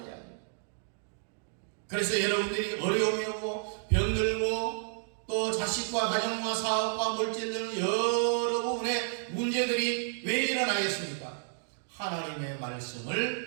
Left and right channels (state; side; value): silent; left; digital silence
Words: 이야기입니다. 그래서 여러분들이 어려움이 오고 병들고 또 자식과 가정과 사업과 물질 등 여러 부분의 문제들이 왜 일어나겠습니까? 하나님의